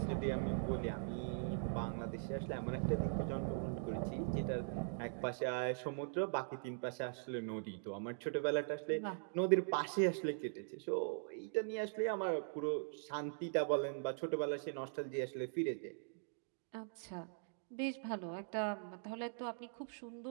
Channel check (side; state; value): left; silent; digital silence